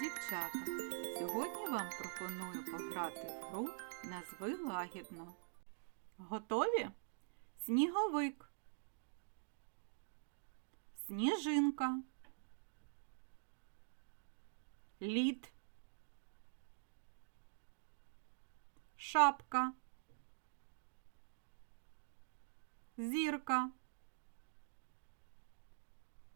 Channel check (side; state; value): left; silent; digital silence